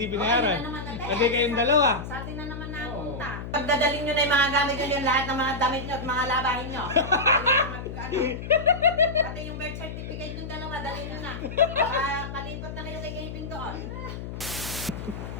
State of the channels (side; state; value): left; noise; hum, 8 dB below the sound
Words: binayaran? Ayun na naman natin. Kasi kayong dalawa. Sa atin na naman napunta. Pagdadalhin nyo na yung mga gamit nyo, yung lahat ng mga damit nyo at mga labahin nyo. Pati yung birth certificate yung dalawa, dalhin nyo na. Palipat na kayo kay Gavin doon.